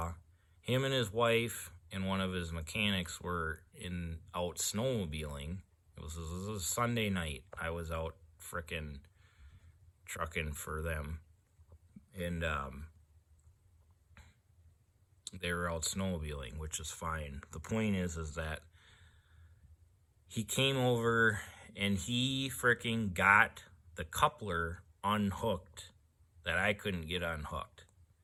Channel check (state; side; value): identical; both; correlation 1.00